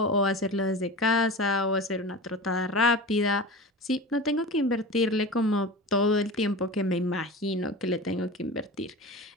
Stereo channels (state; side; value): normal; both; correlation 0.31